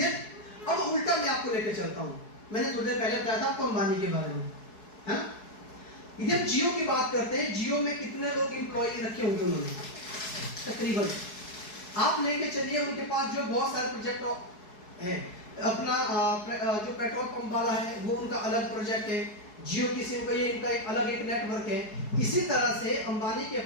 अब उल्टा मैं आपको लेकर चलता हूं। मैंने थोड़ी देर पहले बताया था आपको अंबानी के बारे में, है ना? इधर जियो की बात करते हैं, जियो में कितने लोग एम्प्लॉय रखे होंगे उन्होंने? तकरीबन आप लेके चलिए, उनके पास जो बहुत सारे प्रोजेक्ट है, अपना जो पेट्रोल पंप वाला है वो उनका अलग प्रोजेक्ट है, जियो की सिम का ये इनका एक अलग एक नेटवर्क है। इसी तरह से अंबानी के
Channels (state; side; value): late; right; 4.7 ms